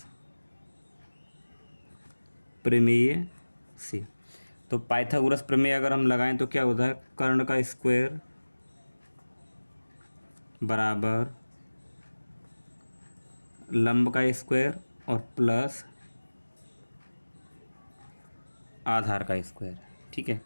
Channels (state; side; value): inverted; both; correlation -1.00